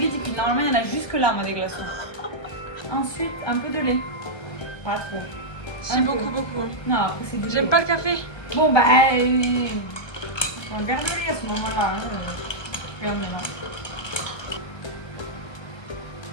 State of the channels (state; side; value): late; right; 1.5 ms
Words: Normalement, il y en a jusque là, moi, des glaçons. Ensuite, un peu de lait. Pas trop. J'aime beaucoup. Non, après, c'est du lait. J'aime pas le café. Bon, bah, on va garder le lait à ce moment-là. Regarde maintenant.